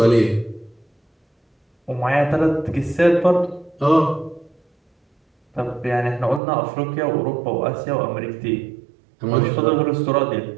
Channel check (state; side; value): drops out; left; at 6.4 s